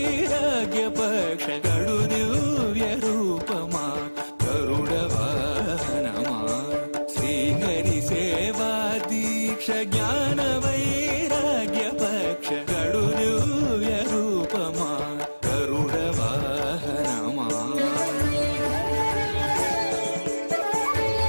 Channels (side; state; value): both; inverted; correlation -1.00